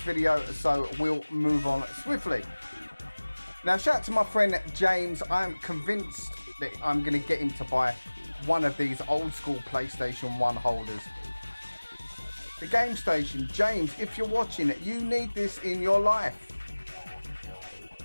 video, so we'll move on swiftly. Now, shout out to my friend James. I'm convinced that I'm going to get him to buy one of these old school PlayStation 1 holders. The Game Station. James, if you're watching it, you need this in your life.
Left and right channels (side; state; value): both; inverted; correlation -1.00